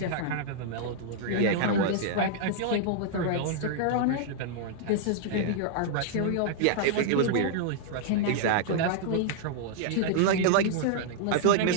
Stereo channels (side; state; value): both; different; correlation -0.01